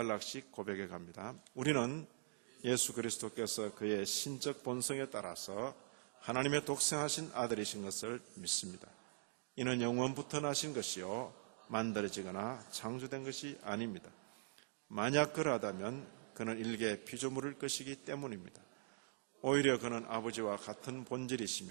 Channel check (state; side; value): silent; left; digital silence